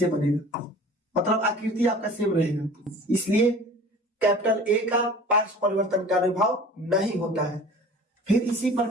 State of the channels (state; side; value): normal; both; correlation 0.43